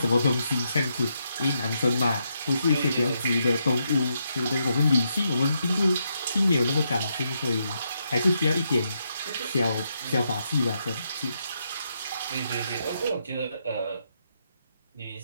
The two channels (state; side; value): inverted; both; correlation -0.80